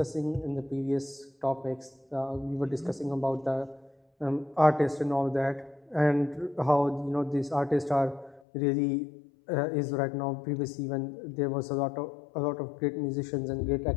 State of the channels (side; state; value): right; drops out; at 8.4 s